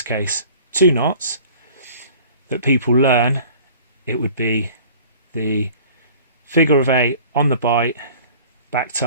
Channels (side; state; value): both; inverted; correlation -0.47